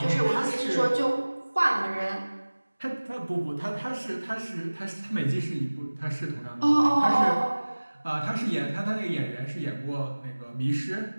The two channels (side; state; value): both; inverted; correlation -1.00